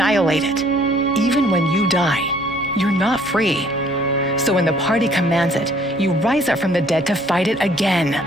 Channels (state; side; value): normal; both; correlation 0.60